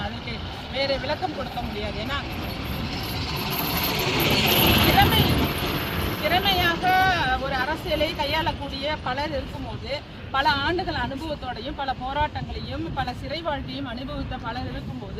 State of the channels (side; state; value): both; identical; correlation 1.00